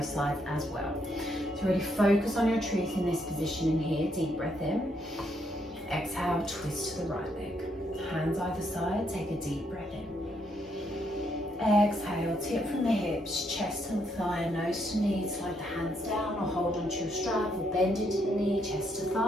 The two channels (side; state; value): both; normal; correlation 0.75